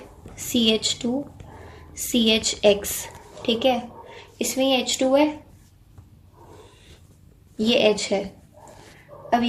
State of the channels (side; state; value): both; identical; correlation 1.00